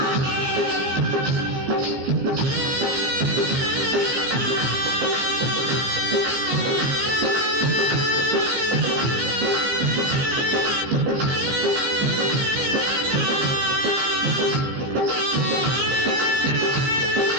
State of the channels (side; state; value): left; late; 15 ms